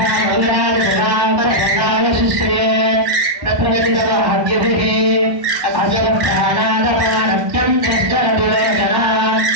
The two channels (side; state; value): left; late; 1.1 ms